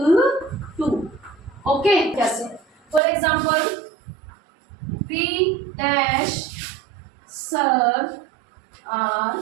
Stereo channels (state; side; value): drops out; left; at 3.0 s